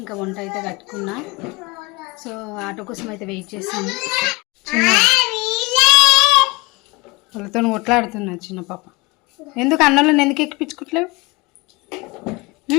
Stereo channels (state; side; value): quieter; right; 24.5 dB